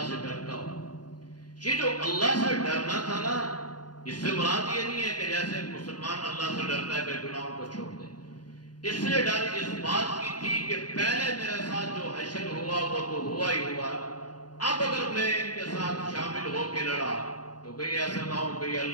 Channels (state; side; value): late; right; 0.69 ms